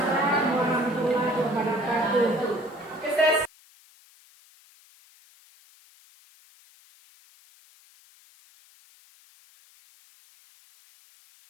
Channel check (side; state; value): left; noise; hiss, 28 dB below the sound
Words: warahmatullahi wabarakatuh. Oke, saya